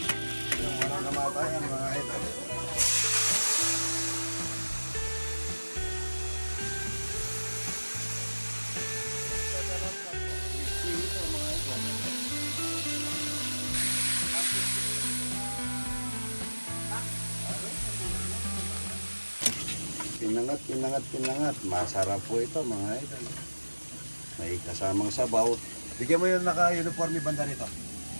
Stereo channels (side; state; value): both; inverted; correlation -1.00